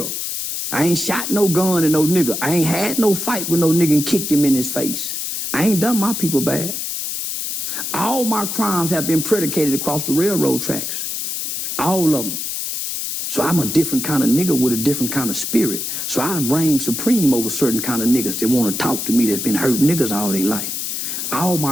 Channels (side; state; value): left; noise; hiss, 4 dB below the sound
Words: I ain't shot no gun at no nigga. I ain't had no fight with no nigga and kicked him in his face. I ain't done my people bad. All my crimes have been predicated across the railroad tracks. All of them. So I'm a different kind of nigga with a different kind of spirit. So I reign supreme over certain kind of niggas that want to talk to me that's been hurting niggas all their life. All